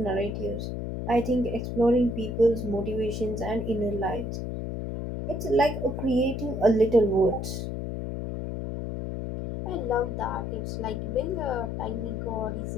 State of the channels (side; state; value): left; noise; hum, 4 dB below the sound